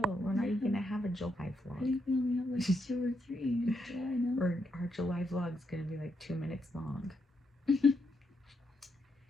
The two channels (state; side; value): normal; both; correlation 0.80